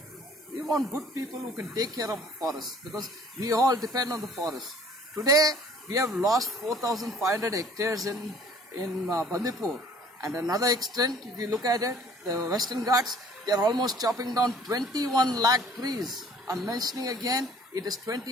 We want good people who can take care of the forest, because we all depend on the forest. Today, we have lost 4,500 hectares in Bandipur. And another extent, if you look at it, the Western Ghats, they are almost chopping down 21 lakh trees. I'm mentioning again, it is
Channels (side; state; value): both; normal; correlation 0.53